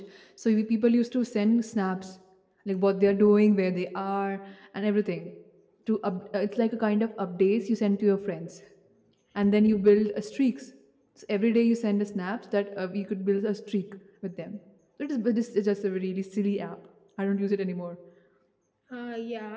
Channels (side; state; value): both; identical; correlation 1.00